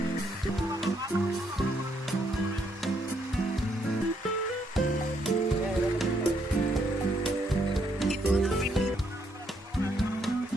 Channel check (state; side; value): normal; both; correlation 0.73